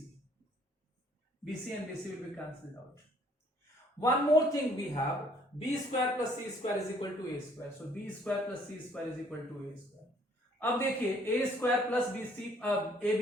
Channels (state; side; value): normal; both; correlation 0.61